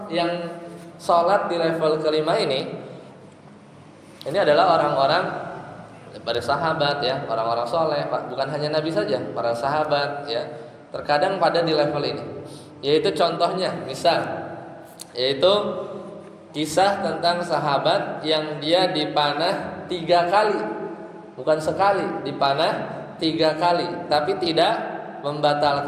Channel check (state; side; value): identical; both; correlation 1.00